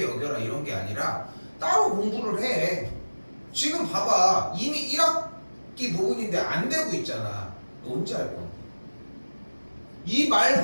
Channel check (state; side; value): inverted; both; correlation -1.00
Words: 여겨라 이런 게 아니라 따로 공부를 해. 지금 봐봐, 이미 1학기 부분인데 안 되고 있잖아. 너 언제 할 건데? 이